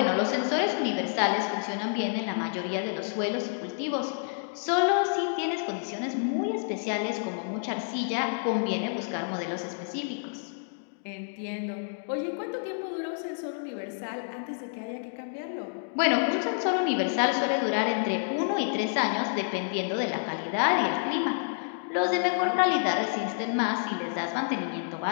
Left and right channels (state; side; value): silent; right; digital silence